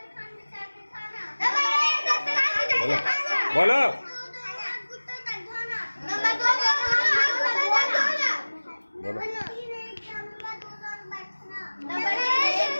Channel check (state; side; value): inverted; both; correlation -1.00